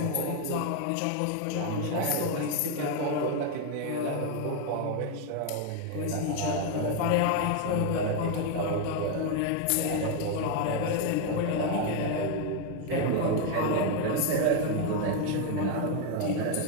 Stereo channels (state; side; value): different; both; correlation 0.01